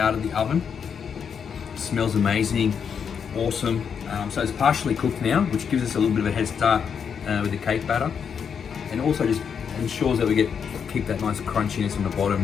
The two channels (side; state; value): right; quieter; 7.0 dB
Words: of the oven. It smells amazing, awesome. So it's partially cooked now, which gives us a little bit of a head start with the cake batter, and also just ensures that we keep that nice crunchiness on the bottom